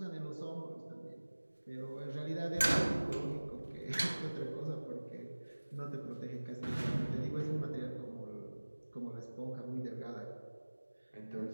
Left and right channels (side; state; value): both; inverted; correlation -1.00